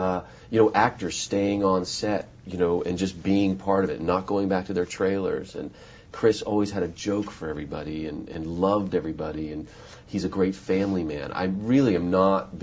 You know, actors staying on set, you know, and just being part of it, not going back to their trailers. And Chris always had a joke for everybody and loved everybody, and he's a great family man. I really am not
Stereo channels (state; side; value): identical; both; correlation 1.00